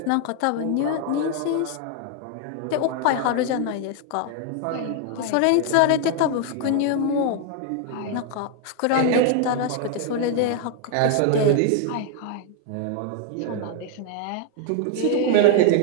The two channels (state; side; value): different; both; correlation 0.00